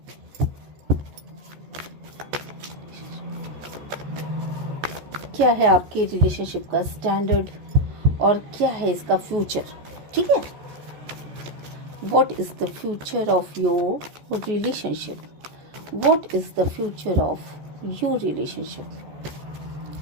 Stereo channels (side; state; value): left; late; 14 ms